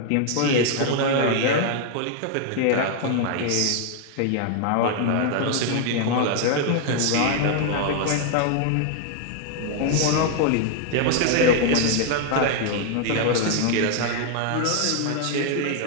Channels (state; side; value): different; both; correlation 0.00